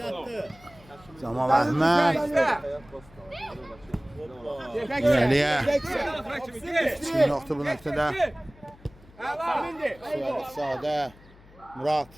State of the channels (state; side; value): noise; left; hum, 24 dB below the sound